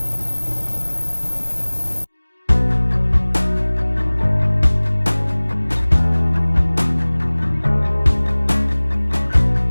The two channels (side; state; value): both; inverted; correlation -1.00